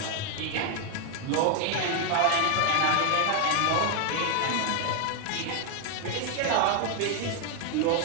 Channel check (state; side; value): different; both; correlation 0.00